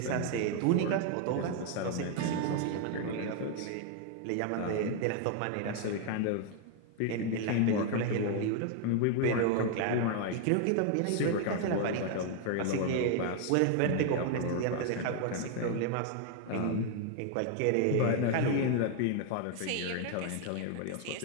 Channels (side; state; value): both; different; correlation 0.00